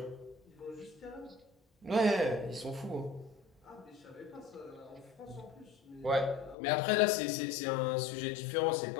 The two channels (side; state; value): right; drops out; at 6.6 s